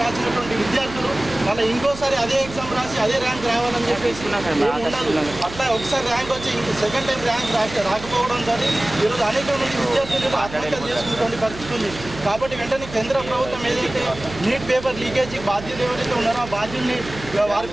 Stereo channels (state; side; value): noise; right; hum, 14 dB below the sound